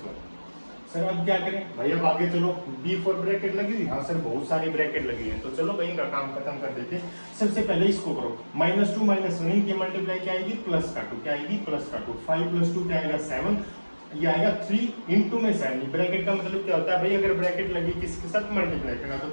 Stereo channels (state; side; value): inverted; both; correlation -1.00